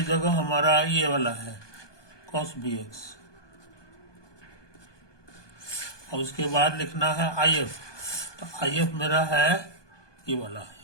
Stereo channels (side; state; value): right; late; 1.2 ms